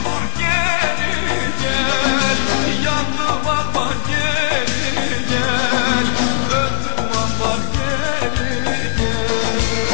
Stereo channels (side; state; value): right; silent; digital silence